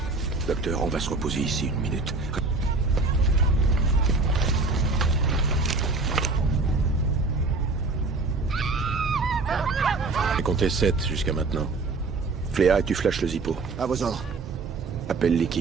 Docteur, on va se reposer ici une minute. J'ai compté 7 jusqu'à maintenant. Fléa, et tu flashes le Zippo. À vos ordres. Appelle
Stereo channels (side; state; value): left; quieter; 3.6 dB